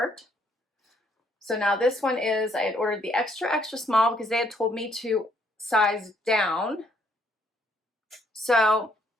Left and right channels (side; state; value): both; normal; correlation 0.68